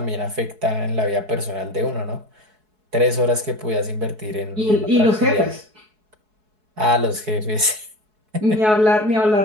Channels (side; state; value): left; late; 4.7 ms